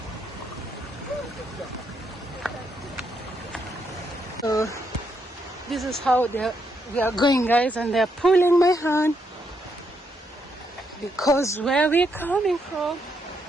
So this is how we are going, guys, and they're pulling my hand because where we're coming from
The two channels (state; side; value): normal; both; correlation 0.78